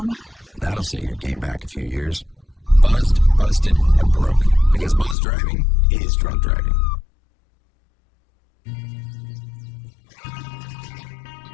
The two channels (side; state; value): right; drops out; at 5.2 s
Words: That'll set your game back a few years. Buzzed, busted, and broke. Because buzz driving is drunk driving.